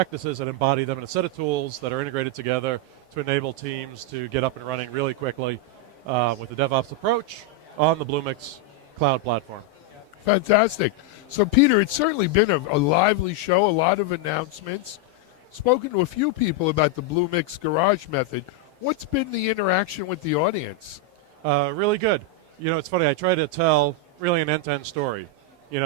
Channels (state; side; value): late; left; 7.8 ms